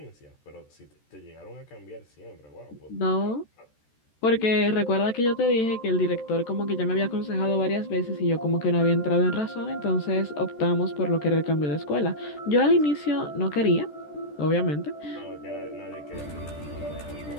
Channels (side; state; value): right; late; 14 ms